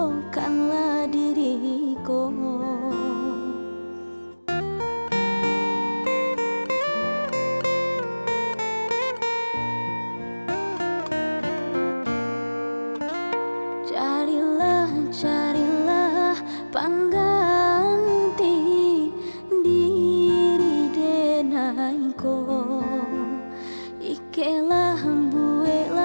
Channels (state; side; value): inverted; both; correlation -1.00